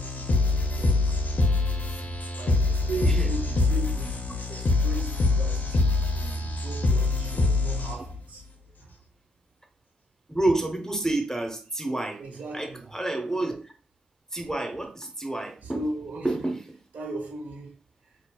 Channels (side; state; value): both; normal; correlation 0.71